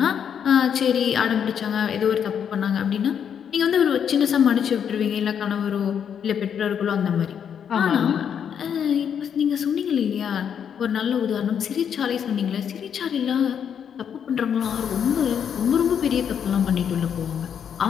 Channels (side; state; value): right; quieter; 8.1 dB